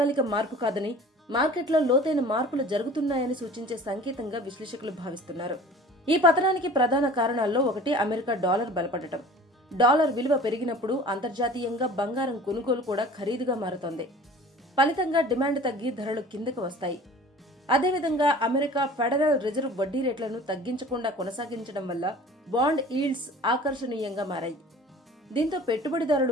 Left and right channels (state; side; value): normal; both; correlation 0.44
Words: మార్పు కాదని, మార్కెట్లో లోతైన మార్పులు జరుగుతున్నాయని సూచించే సంకేతంగా విశ్లేషకులు భావిస్తున్నారు. ఈ పతనానికి ప్రధాన కారణాల్లో ఒకటి అమెరికా డాలర్ బలపడటం. డాలర్ విలువ పెరిగినప్పుడు అంతర్జాతీయంగా బంగారం కొనుగోలు కూడా ఖరీదుగా మారుతోంది. ఫలితంగా డిమాండ్ తగ్గి ధరలు కిందకు వస్తాయి. అదేవిధంగా అమెరికా ఫెడరల్ రిజర్వ్ వడ్డీ రేట్లను తగ్గించకుండా కొనసాగించడం వల్ల బాండ్ ఈల్డ్స్ ఆకర్షణీయంగా మారాయి. దీంతో